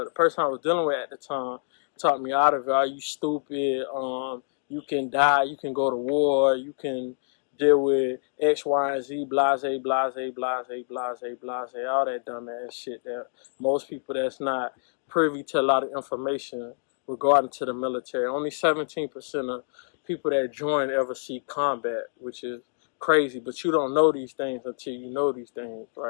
the person I was dealing with at the time talked me out of it. Are you stupid? You can die. You can go to war. You can deal with X, Y, and Z, blase, blase, blase, blase, blase, all that dumbass shit that most people that's not privy to a lot of information regarding to the military. Only 17% of people that join ever see combat, which is crazy. But you don't know these things until you know these things,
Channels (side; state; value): right; silent; digital silence